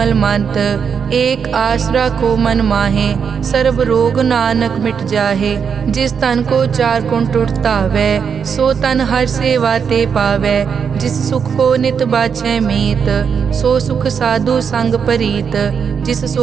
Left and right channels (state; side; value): quieter; left; 6.7 dB